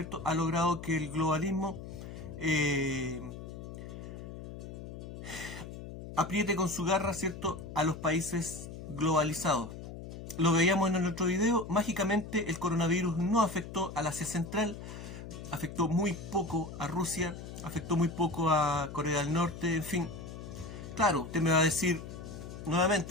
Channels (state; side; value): noise; left; hum, 11 dB below the sound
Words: ha logrado que el globalismo apriete con su garra, ¿cierto?, a los países globalizados. Lo veíamos en el otro video, mágicamente el coronavirus no afectó al Asia Central, afectó muy poco a Rusia, afectó muy poco a Corea del Norte, en fin. Claro, usted me va a decir